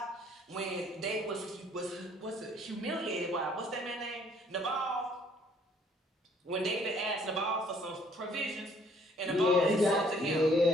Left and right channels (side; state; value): both; normal; correlation 0.61